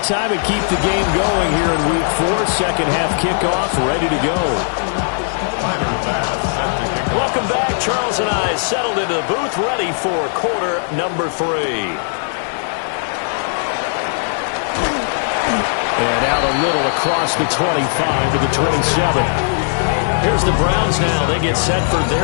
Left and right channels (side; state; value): right; silent; digital silence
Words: and keep the game going here in week 4. Second half kickoff ready to go. Welcome back. Charles and I settled into the booth ready for quarter number 3. And out a little across the 25 to the 27. Here's the Browns now. They get set for